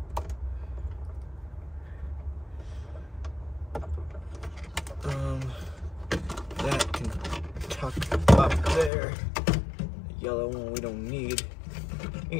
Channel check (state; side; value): drops out; right; at 8.9 s